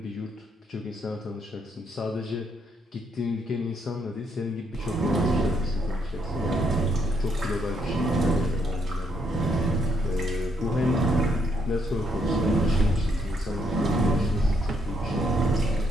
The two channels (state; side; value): normal; both; correlation 0.74